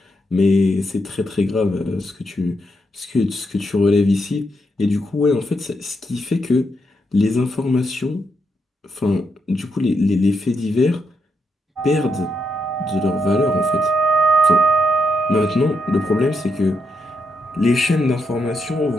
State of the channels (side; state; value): both; normal; correlation 0.81